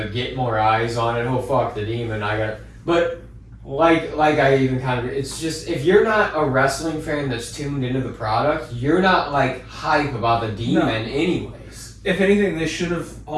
get more eyes on it. Oh fuck, the Demon! But like I even kind of, it's just if you're not a wrestling fan that's tuned into the product, you're not like hype about the Demon anyways. if anything, they should have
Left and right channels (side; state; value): both; identical; correlation 1.00